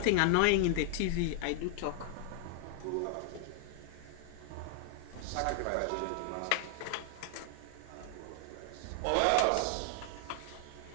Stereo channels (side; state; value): both; different; correlation 0.00